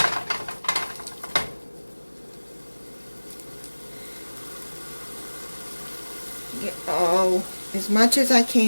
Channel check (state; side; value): inverted; both; correlation -1.00